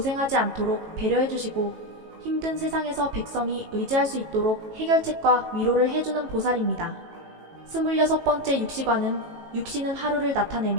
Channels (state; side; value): late; left; 18 ms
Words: 않도록 배려해주시고 힘든 세상에서 백성이 의지할 수 있도록 해결책과 위로를 해주는 보살입니다. 26번째 육시관은 육시는 하루를